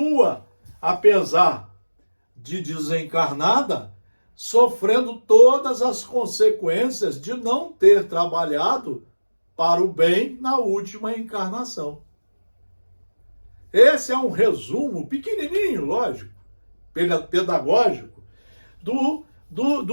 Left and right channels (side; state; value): both; inverted; correlation -1.00